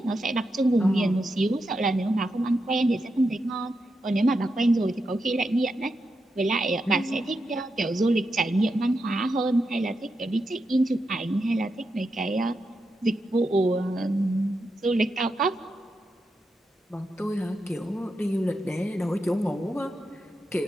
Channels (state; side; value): normal; both; correlation 0.86